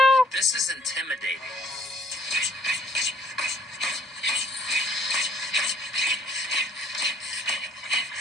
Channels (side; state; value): both; normal; correlation 0.60